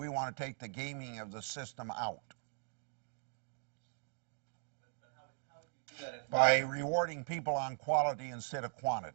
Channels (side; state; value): left; silent; 51 dB below the other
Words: want to take the gaming of the system out. But how would you do that if By rewarding people on quality instead of